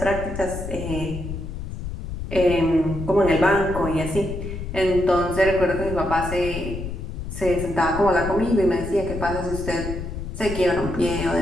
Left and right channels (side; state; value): left; noise; rumble, 7 dB below the sound